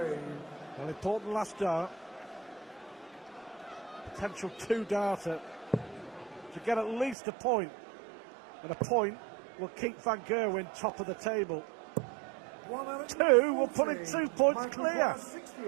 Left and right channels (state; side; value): drops out; left; at 7.2 s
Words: Well, important last dart. Potential 2-darter to get at least a point. And a point will keep Van Gerwen top of the table. 2 will put it 2 points clear.